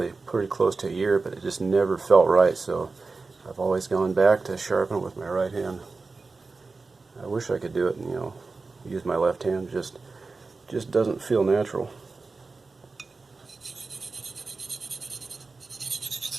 pretty close to a year, but it just never felt right, so I've always gone back to sharpen with my right hand. I wish I could do it, you know, use my left hand. Just doesn't feel natural.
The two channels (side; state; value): left; quieter; 4.0 dB